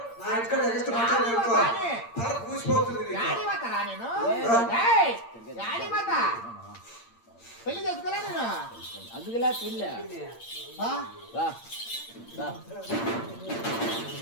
నా ఇంటికాడ ఎగస్ట్ మాట్లాడనుకో తల కూసిపోతుంది. పెళ్లి చేసుకోలే నేను అందుకులా పెళ్ళి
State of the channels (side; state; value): right; late; 8.7 ms